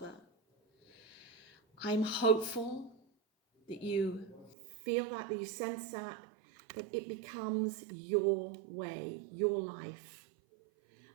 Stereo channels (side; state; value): left; drops out; at 4.5 s